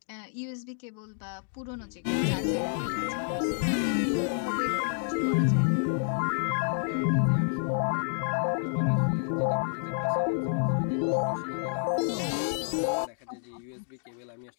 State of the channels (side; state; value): right; silent; digital silence